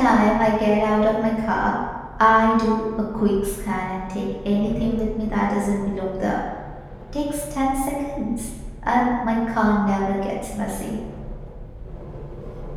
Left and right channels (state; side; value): identical; both; correlation 1.00